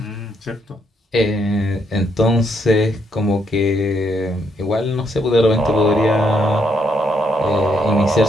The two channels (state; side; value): normal; both; correlation 0.74